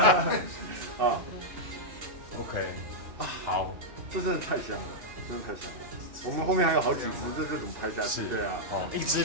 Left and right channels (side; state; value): left; late; 2.6 ms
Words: OK。好，这真的太香了，真的太香了。我们后面还有好几支，这怎么拍下去？对啊，一支